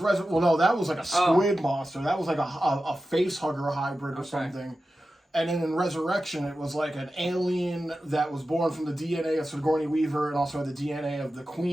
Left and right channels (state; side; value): normal; both; correlation 0.93